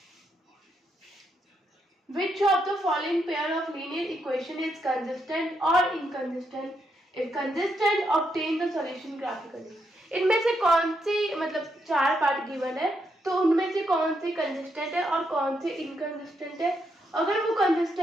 Which of the following pair of linear equation is consistent or inconsistent? If consistent, obtain the solution graphically. इनमें से कौन सी मतलब 4 पार्ट गिवन है, तो उनमें से कौन सी कंसिस्टेंट है और कौन सी इनकंसिस्टेंट है। अगर वो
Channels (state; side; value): normal; both; correlation 0.79